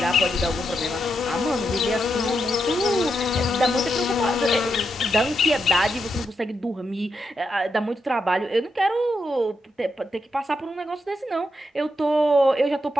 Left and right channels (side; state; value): both; normal; correlation 0.84